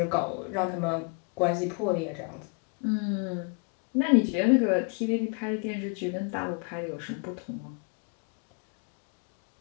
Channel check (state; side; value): quieter; right; 36.6 dB